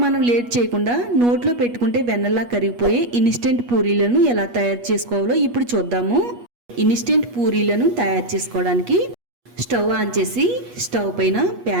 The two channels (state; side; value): late; left; 8.3 ms